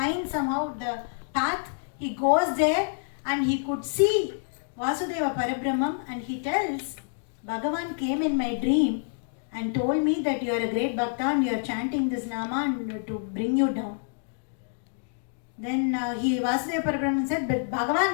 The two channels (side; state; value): right; silent; digital silence